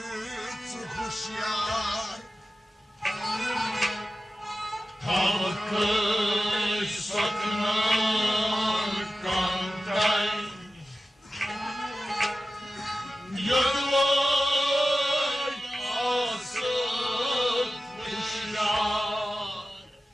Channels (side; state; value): both; normal; correlation 0.94